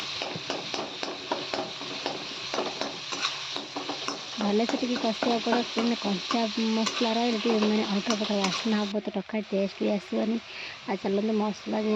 भले से कषा पड़े कंचा मसला रही मैंने अल्टा प्रकार बास्ना हम तो टका टेस्ट भी आसवानी आ चलते मसला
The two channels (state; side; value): identical; both; correlation 1.00